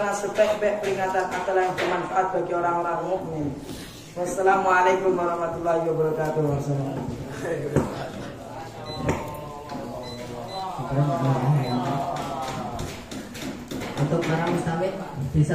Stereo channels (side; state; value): both; identical; correlation 1.00